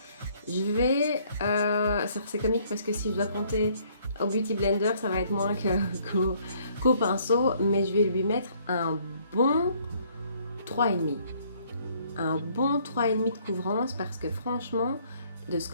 je vais... c'est comique parce que si je dois compter au Beauty Blender, ça va être moins qu'au pinceau, mais je vais lui mettre un bon 3,5. Un bon 3,5 de couvrance parce que franchement, de ce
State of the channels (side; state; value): both; inverted; correlation -0.64